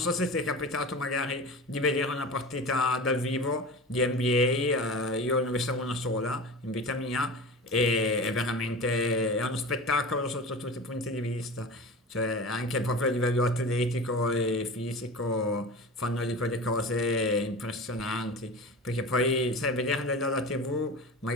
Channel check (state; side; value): normal; both; correlation 0.32